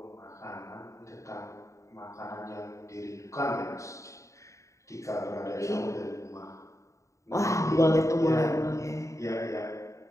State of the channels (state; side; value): late; right; 0.15 ms